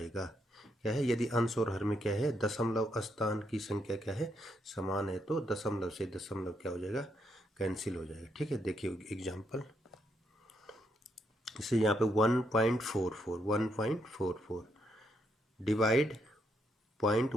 क्या है? यदि अंश और हर में क्या है? दशमलव स्थान की संख्या क्या है? समान है, तो दशमलव से दशमलव क्या हो जाएगा? कैंसिल हो जाएगा। ठीक है, देखिए एग्जाम्पल। इसे यहाँ पे 1.44 डिवाइड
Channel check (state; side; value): normal; both; correlation 0.78